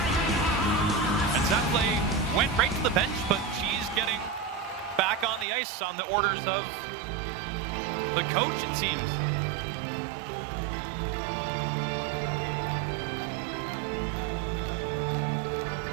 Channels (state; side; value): drops out; left; at 5.5 s